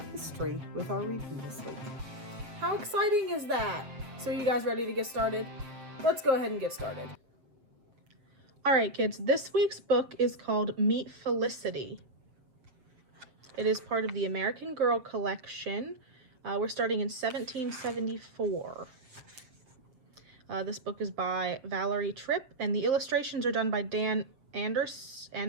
history with our reading this week. How exciting is that? So, are you guys ready to get started? Let's go ahead and get started. All right, kids, this week's book is called Meet Felicity. It is part of the American Girl collection. We're starting in 1774. This book is by Valerie Tripp, and the illustrations are done by Dan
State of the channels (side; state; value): left; late; 7.6 ms